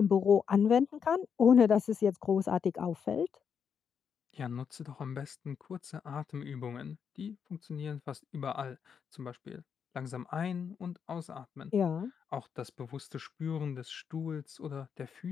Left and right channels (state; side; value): quieter; right; 7.0 dB